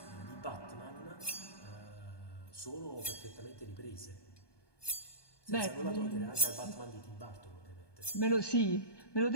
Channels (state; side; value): late; right; 1.2 ms